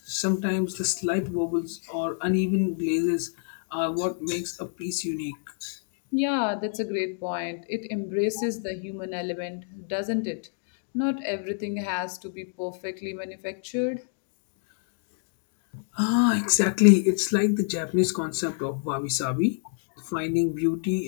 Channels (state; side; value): silent; right; digital silence